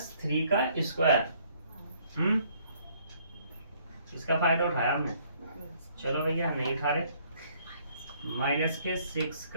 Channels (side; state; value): both; inverted; correlation -0.63